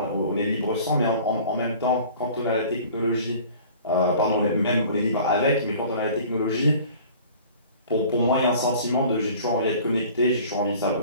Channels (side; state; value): both; inverted; correlation -0.46